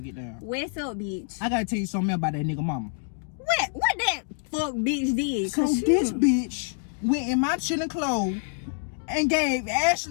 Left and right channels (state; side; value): silent; right; 60 dB below the other